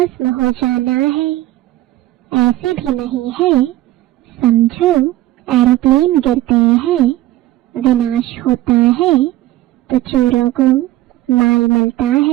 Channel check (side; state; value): left; quieter; 15.7 dB